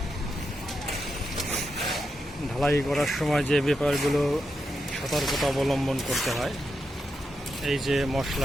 ঢালাই করার সময় যে ব্যাপারগুলো সতর্কতা অবলম্বন করতে হয়, এই যে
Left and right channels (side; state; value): both; normal; correlation 0.86